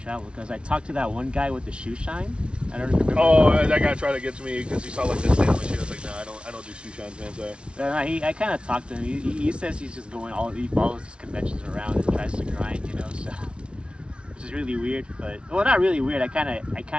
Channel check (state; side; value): late; left; 0.058 ms